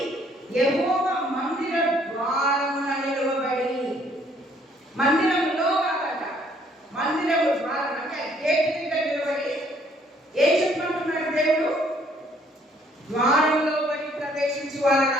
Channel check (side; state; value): both; normal; correlation 0.64